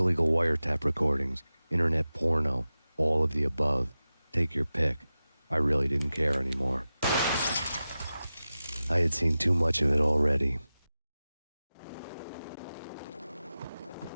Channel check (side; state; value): both; inverted; correlation -0.94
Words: wiretap recordings, internet porno, all of the above. Take your pick. I really didn't care anymore. I had seen too much of it already.